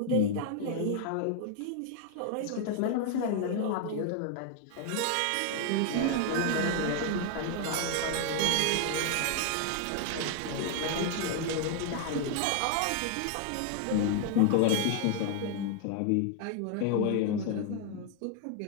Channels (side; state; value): both; different; correlation 0.00